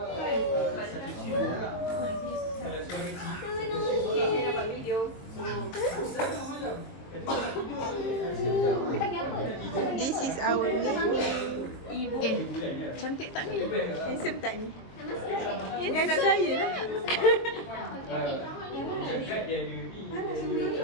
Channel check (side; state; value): right; late; 22 ms